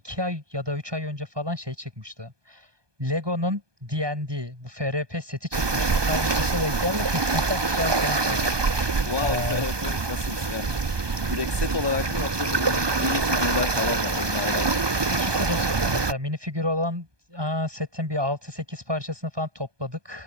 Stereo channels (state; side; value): late; left; 1.2 ms